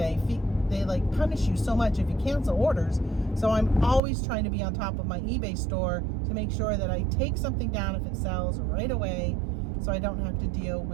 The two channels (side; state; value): left; drops out; at 4.0 s